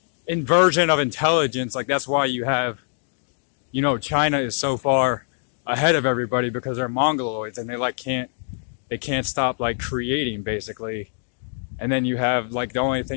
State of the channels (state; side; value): silent; right; digital silence